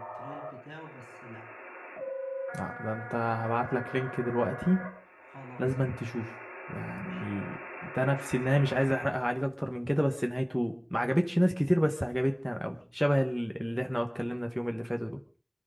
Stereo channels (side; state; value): both; identical; correlation 1.00